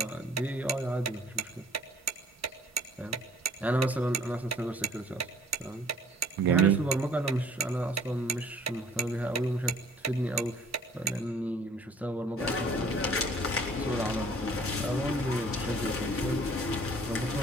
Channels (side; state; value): both; normal; correlation 0.55